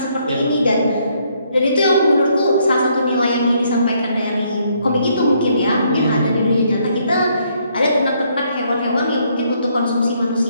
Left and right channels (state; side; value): inverted; both; correlation -0.70